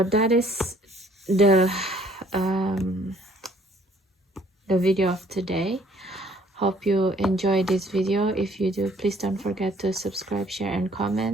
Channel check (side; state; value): both; normal; correlation 0.60